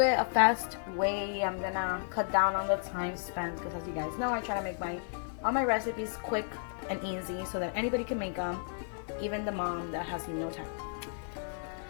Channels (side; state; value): right; silent; digital silence